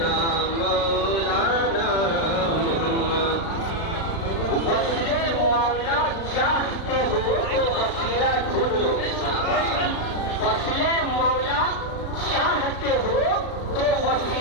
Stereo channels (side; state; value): right; late; 36 ms